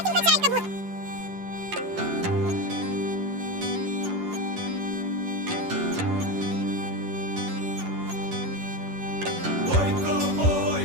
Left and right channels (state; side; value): late; left; 11 ms